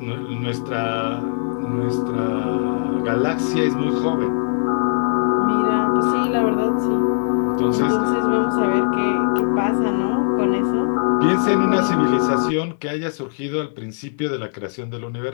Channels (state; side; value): silent; right; digital silence